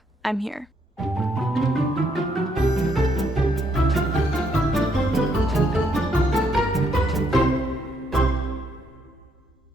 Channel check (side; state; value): both; normal; correlation 0.72